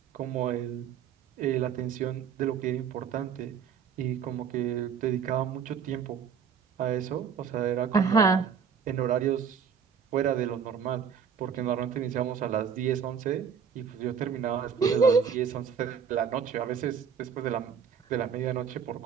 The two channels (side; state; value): left; quieter; 7.1 dB